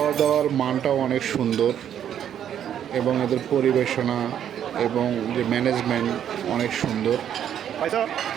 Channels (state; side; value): quieter; left; 9.7 dB